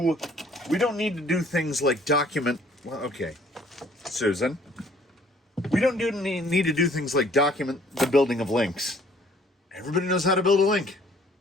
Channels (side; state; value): both; normal; correlation 0.58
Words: things like document, well, okay, Susan. We don't need to do things like document the building of links. Everybody knows how to build a link.